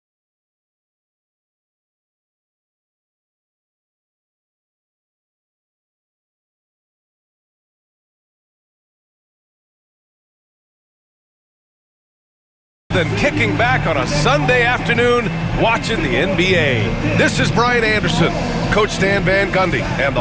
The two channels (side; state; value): both; identical; correlation 1.00